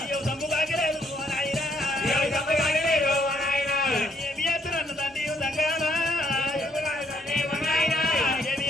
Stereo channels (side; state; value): both; normal; correlation 0.69